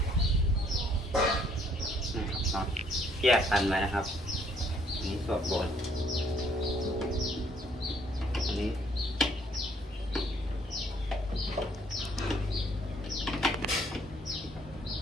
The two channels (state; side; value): normal; both; correlation 0.65